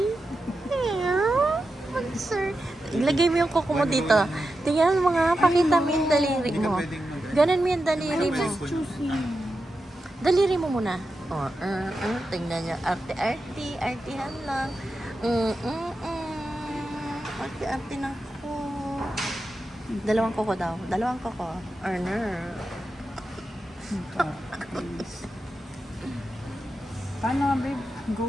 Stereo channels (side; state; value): both; normal; correlation 0.90